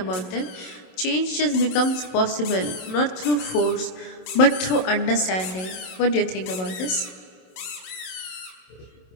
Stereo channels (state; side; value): late; right; 27 ms